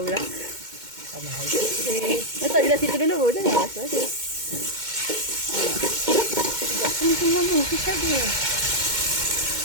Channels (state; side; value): late; left; 2.1 ms